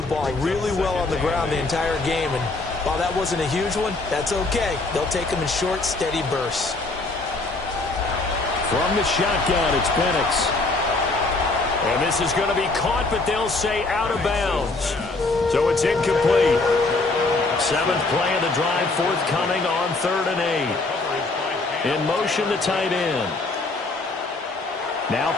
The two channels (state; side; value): quieter; right; 3.3 dB